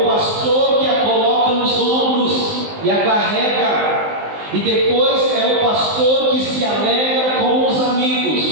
pastor que a coloca nos ombros e a carrega. E depois é o pastor que se alegra com os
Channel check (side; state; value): left; late; 19 ms